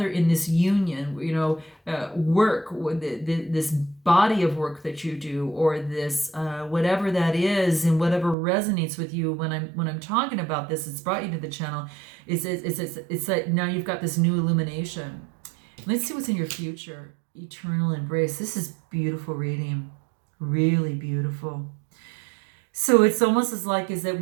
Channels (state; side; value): drops out; left; at 8.3 s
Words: in this union, work, this body of work that you do, or this whatever that is, and whatever resonates with you. When I'm talking about this, it's brought you to the channel. It's like now you've got this new illumination. Let's see what's in your future. Eternal embrace. This is beautiful reading, really beautiful. So it's almost as like is that